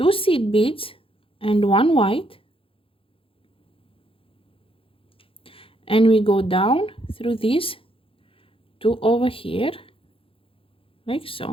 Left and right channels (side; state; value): right; late; 0.27 ms